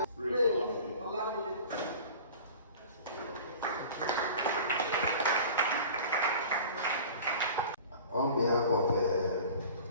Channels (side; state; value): both; inverted; correlation -0.40